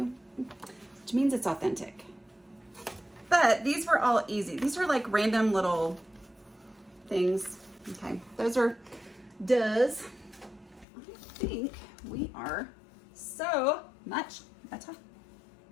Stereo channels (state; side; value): drops out; right; at 10.9 s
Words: which means it's authentic. But these were all easy. These were like random little things. Okay, those are does. I think we are so much better.